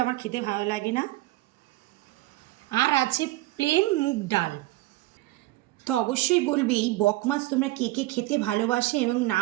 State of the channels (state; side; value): quieter; left; 18.6 dB